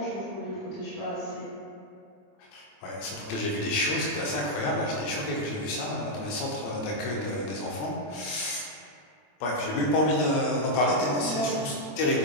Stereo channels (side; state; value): right; late; 25 ms